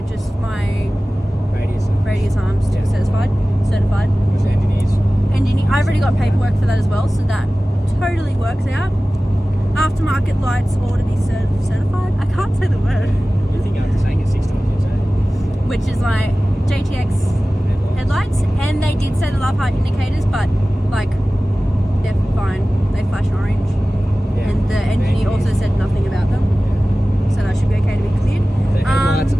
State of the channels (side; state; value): both; normal; correlation 0.97